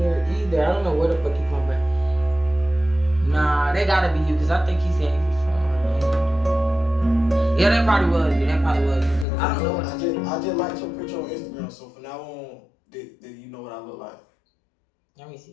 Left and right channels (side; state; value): right; drops out; at 9.2 s